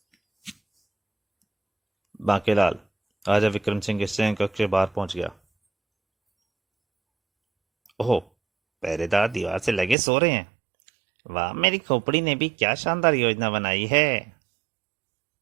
बांकेलाल राजा विक्रम सिंह के शयन कक्ष के बाहर पहुंच गया। ओह, पहरेदार दीवार से लगे सो रहे हैं। वाह, मेरी खोपड़ी ने भी क्या शानदार योजना बनाई है।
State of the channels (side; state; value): left; drops out; at 10.0 s